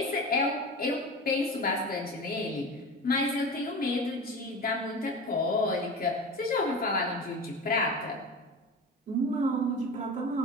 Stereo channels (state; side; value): normal; both; correlation 0.30